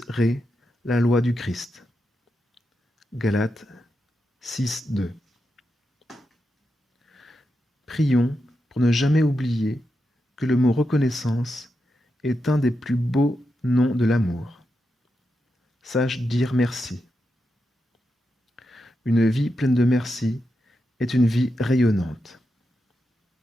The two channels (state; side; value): normal; both; correlation 0.87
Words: la loi du Christ. Galates 6, 2. Prions pour ne jamais oublier que le mot reconnaissance est un des plus beaux noms de l'amour. Sache dire merci. Une vie pleine de merci est une vie rayonnante.